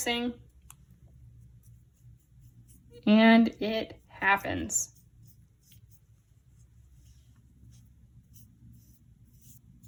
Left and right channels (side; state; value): both; identical; correlation 1.00